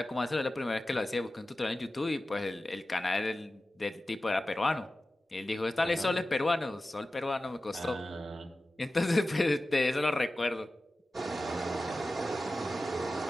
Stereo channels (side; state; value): both; normal; correlation 0.95